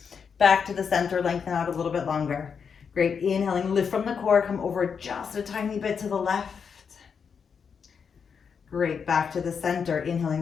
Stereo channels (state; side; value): quieter; right; 6.4 dB